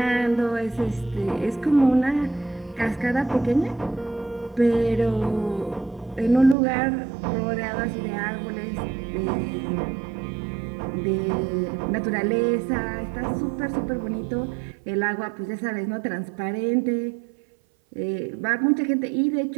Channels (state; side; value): drops out; left; at 6.6 s